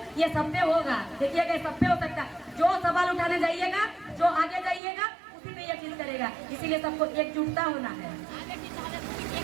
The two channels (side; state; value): left; drops out; at 4.8 s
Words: ये सब पे होगा। देखिएगा, सब पे हो सकता है। जो सवाल उठाने जाइएगा, जो आगे जाइएगा, उसी पे यकीन करेगा। इसीलिए सबको एकजुटता होना है,